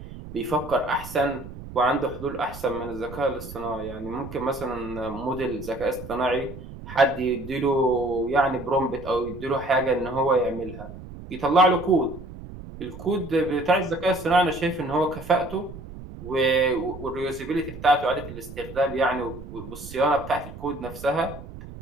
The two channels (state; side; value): noise; right; rumble, 13 dB below the sound